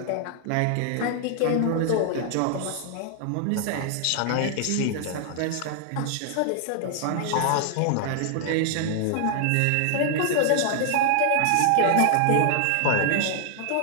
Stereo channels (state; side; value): different; both; correlation -0.01